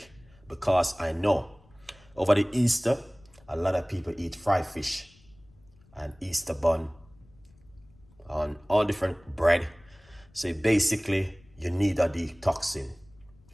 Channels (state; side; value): noise; left; rumble, 28 dB below the sound